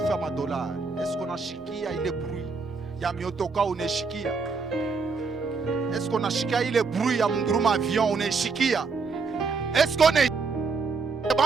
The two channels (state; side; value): quieter; left; 4.6 dB